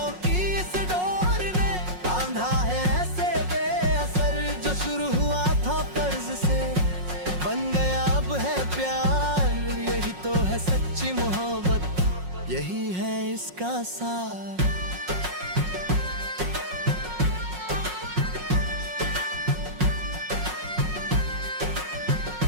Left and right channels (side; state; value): left; late; 5.5 ms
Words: की इस डोर ने बांधा है ऐसे बेअसर। जो शुरू हुआ था फर्ज से बन गया अब है प्यार, यही तो है सच्ची मोहब्बत, यही है इसका सार।